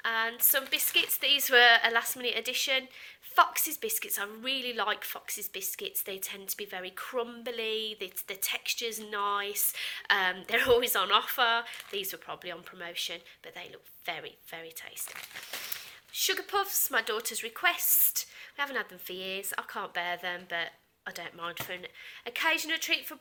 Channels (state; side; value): identical; both; correlation 1.00